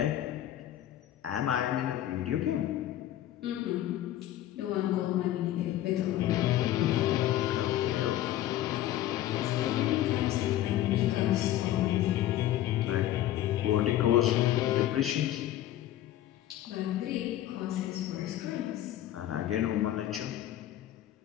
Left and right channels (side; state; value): right; quieter; 13.1 dB